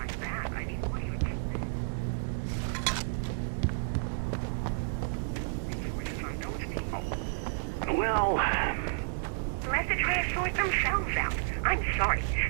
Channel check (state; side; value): silent; left; digital silence